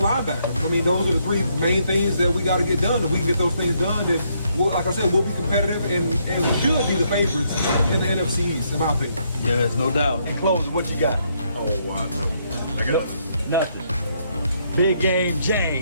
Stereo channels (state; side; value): inverted; both; correlation -0.73